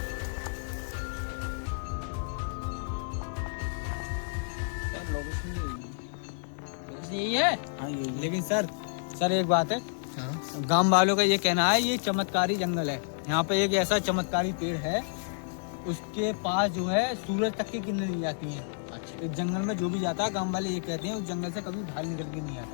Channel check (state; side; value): silent; right; digital silence